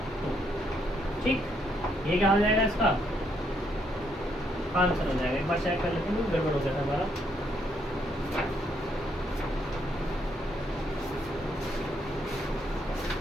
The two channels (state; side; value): normal; both; correlation 0.73